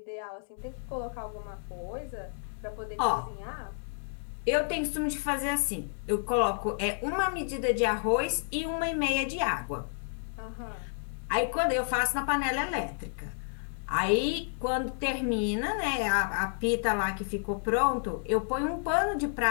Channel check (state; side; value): silent; right; digital silence